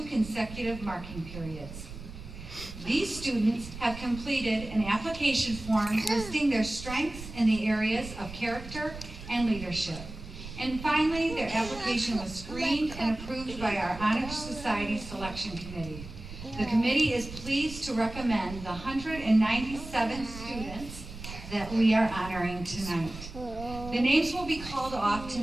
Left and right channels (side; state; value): right; noise; rumble, 12 dB below the sound